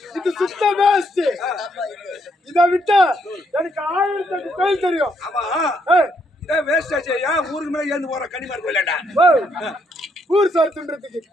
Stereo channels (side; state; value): both; normal; correlation 0.74